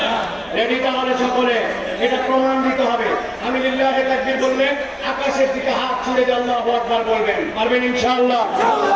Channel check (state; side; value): identical; both; correlation 1.00